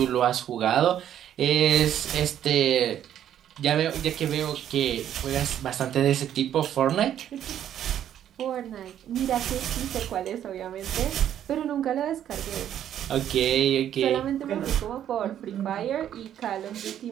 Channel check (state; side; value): quieter; left; 10.5 dB